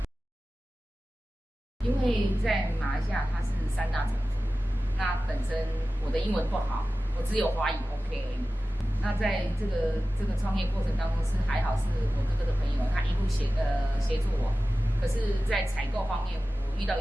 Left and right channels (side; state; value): both; normal; correlation 0.95